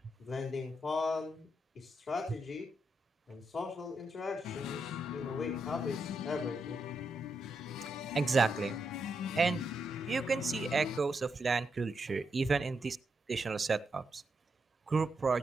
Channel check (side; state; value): both; normal; correlation 0.82